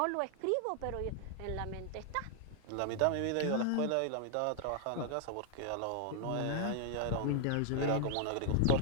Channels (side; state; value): both; different; correlation 0.00